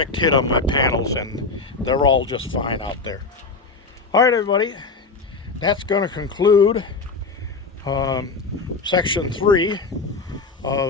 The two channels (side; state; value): right; quieter; 4.2 dB